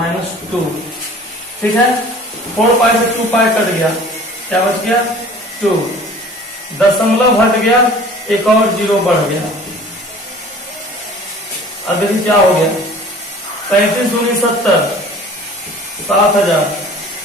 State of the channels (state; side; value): normal; both; correlation 0.46